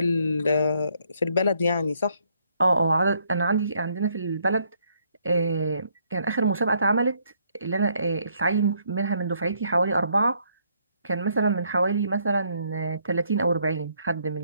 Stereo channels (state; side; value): inverted; both; correlation -0.70